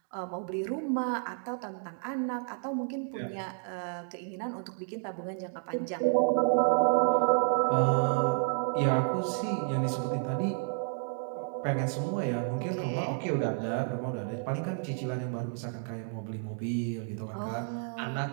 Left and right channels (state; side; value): silent; left; 57 dB below the other